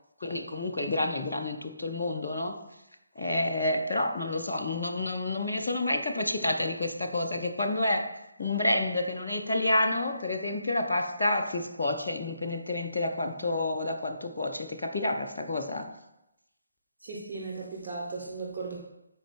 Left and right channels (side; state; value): both; inverted; correlation -0.76